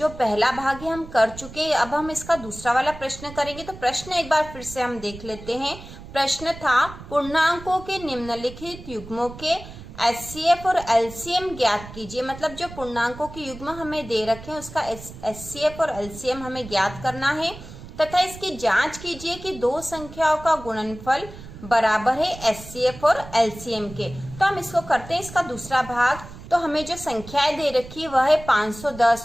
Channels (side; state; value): right; noise; rumble, 15 dB below the sound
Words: पहला भाग है हम कर चुके हैं। अब हम इसका दूसरा वाला प्रश्न करेंगे। तो प्रश्न एक बार फिर से हम देख लेते हैं। प्रश्न था, पूर्णांकों के निम्नलिखित युग्मों के एचसीएफ और एलसीएम ज्ञात कीजिए। मतलब जो पूर्णांकों के युग्म हमें दे रखे हैं उसका एचसीएफ और एलसीएम हमें ज्ञात करना है तथा इसकी जांच कीजिए कि दो संख्याओं का गुणनफल बराबर है एचसीएफ और एलसीएम के। तो हम इसको करते हैं इसका दूसरा भाग। तो हमें जो संख्याएं दे रखी है वह है